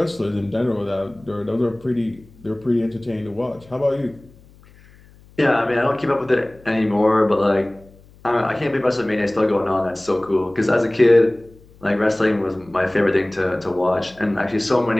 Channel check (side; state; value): left; noise; hum, 26 dB below the sound